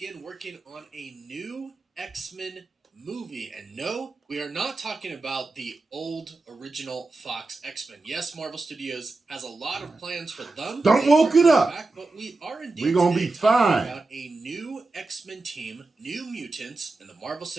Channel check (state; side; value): quieter; left; 3.4 dB